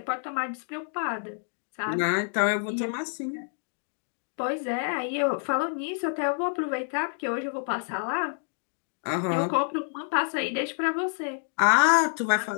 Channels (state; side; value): silent; right; digital silence